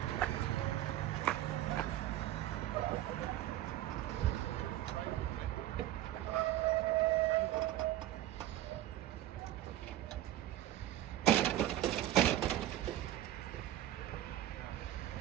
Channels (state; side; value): quieter; left; 13.4 dB